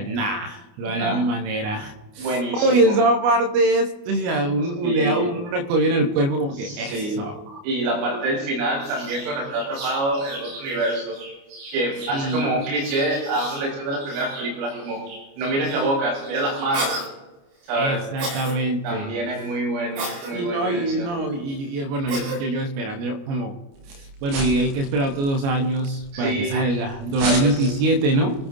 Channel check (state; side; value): late; left; 29 ms